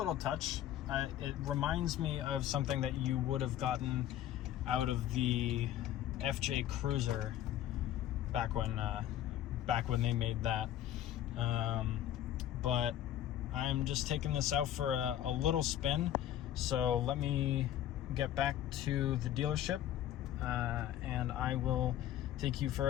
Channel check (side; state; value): right; quieter; 12.0 dB